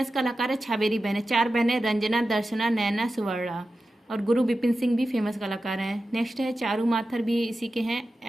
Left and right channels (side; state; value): both; normal; correlation 0.93